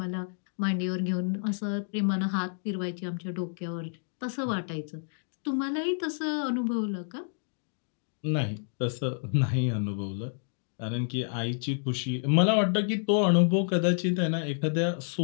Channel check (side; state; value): right; silent; digital silence